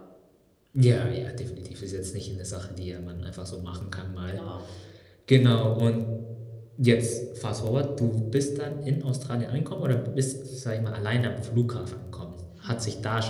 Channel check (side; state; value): both; identical; correlation 1.00